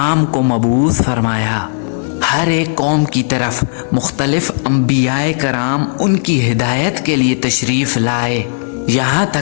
को मबूस फरमाया। हर एक कौम की तरफ मुख्तलिफ अंबियाए कराम उनकी हिदायत के लिए तशरीफ़ लाए, यहाँ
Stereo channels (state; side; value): silent; right; 70 dB below the other